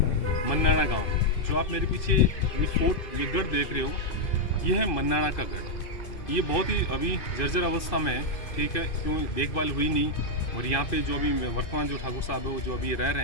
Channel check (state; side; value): late; right; 2.6 ms